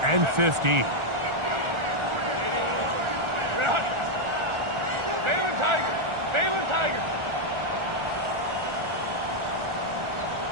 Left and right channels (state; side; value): late; left; 1.4 ms